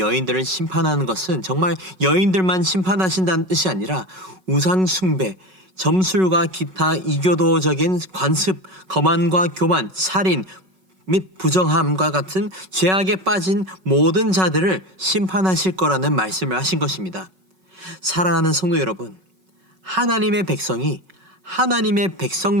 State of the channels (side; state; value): left; late; 5.3 ms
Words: 심판하는 것은 정말 여인들만 심판하신다는 뜻이 아니라 우상 숭배, 점술과 기타 이교도적인 관습, 거만과 교만, 살인 및 부정함과 같은 죄악에 빠진 모든 자들을 심판하실 거라는 말씀을 하신 것입니다. 사랑하는 성도 여러분, 하나님의 백성이 하나님의